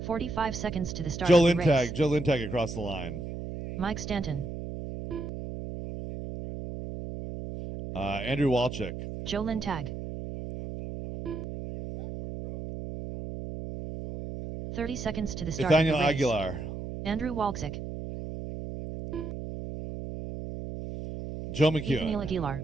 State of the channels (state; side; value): noise; right; hum, 8 dB below the sound